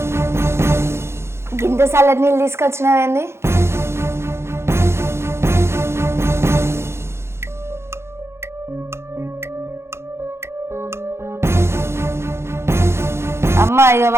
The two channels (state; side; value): late; left; 0.13 ms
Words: గింత చల్లటి నీళ్ళు తీసుకొచ్చినావేంది? అమ్మ ఇక